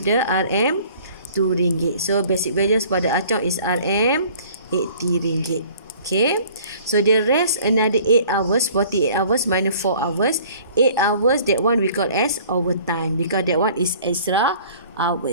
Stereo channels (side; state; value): both; inverted; correlation -0.51